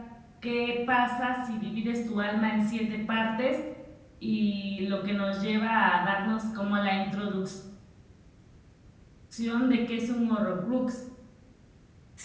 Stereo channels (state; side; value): identical; both; correlation 1.00